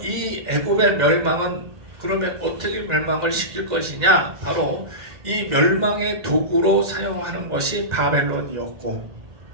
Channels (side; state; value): left; late; 2.1 ms